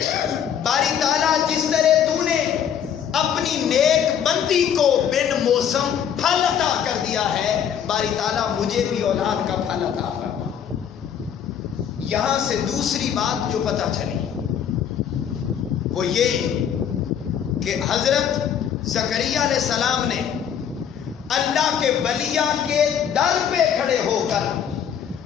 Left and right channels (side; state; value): right; quieter; 8.7 dB